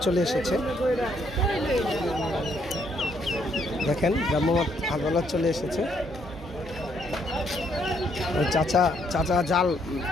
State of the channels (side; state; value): both; normal; correlation 0.71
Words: চলে এসেছে। দেখেন ভ্রাম্যমাণ আদালত চলে এসেছে। ওই চাচা জাল